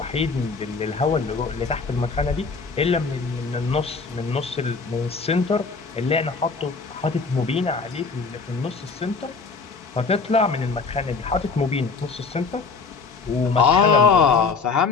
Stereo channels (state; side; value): quieter; right; 4.7 dB